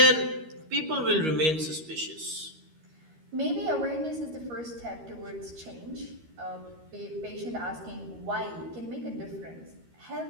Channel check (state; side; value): late; left; 13 ms